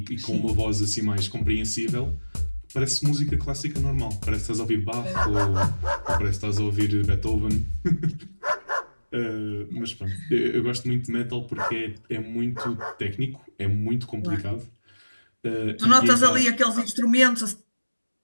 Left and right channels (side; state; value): both; inverted; correlation -1.00